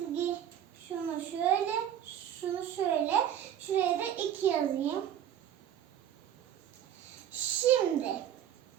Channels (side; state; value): left; quieter; 10.3 dB